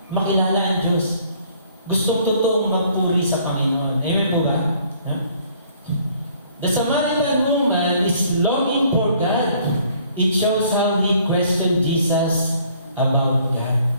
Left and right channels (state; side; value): inverted; both; correlation -0.60